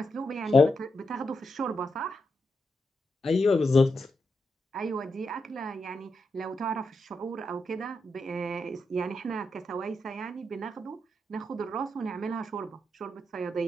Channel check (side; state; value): both; normal; correlation 0.85